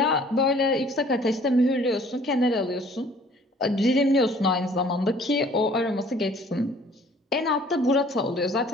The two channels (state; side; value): normal; both; correlation 0.55